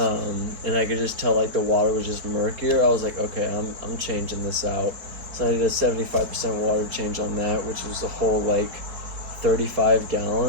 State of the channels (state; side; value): late; left; 4.6 ms